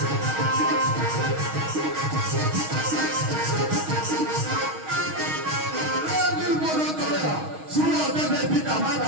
শুনো দেবে পিতা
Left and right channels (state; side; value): late; left; 6.4 ms